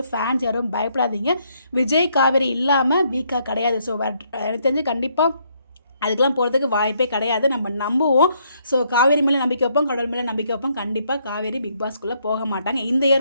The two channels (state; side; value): inverted; both; correlation -0.72